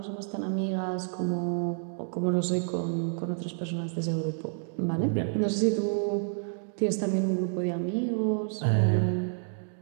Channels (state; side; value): silent; left; digital silence